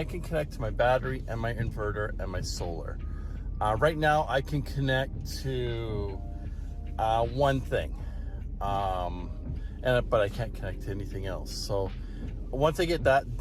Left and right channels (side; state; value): both; identical; correlation 1.00